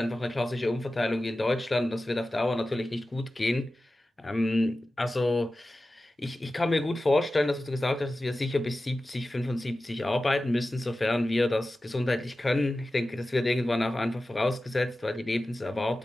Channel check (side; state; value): both; normal; correlation 0.95